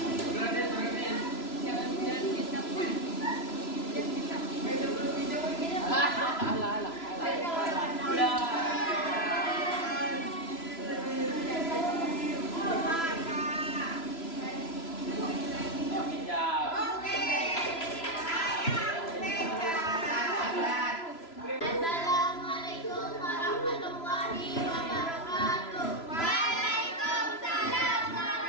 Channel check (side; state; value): right; late; 3.0 ms